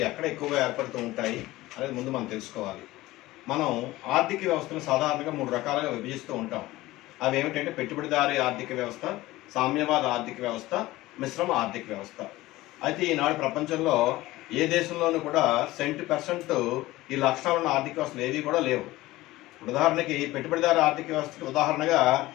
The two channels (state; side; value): quieter; right; 18.0 dB